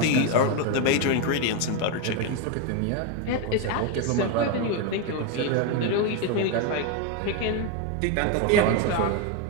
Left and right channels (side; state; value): both; different; correlation 0.02